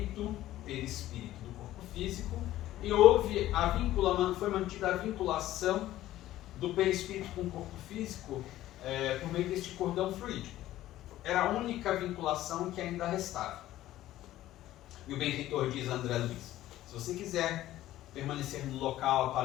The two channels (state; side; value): quieter; right; 14.5 dB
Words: perispírito do corpo físico, e foi mantida a vinculação do perispírito com o corpo físico por meio deste cordão fluídico. Era a única vinculação que ainda restava. E o benfeitor diz a André Luiz: se você quiser permanecer no local